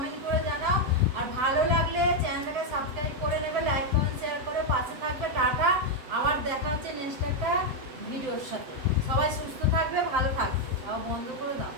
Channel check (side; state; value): left; late; 7.8 ms